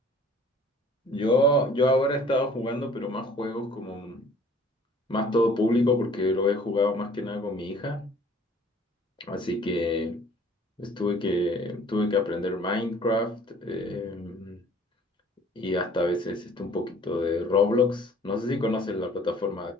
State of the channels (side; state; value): both; normal; correlation 0.53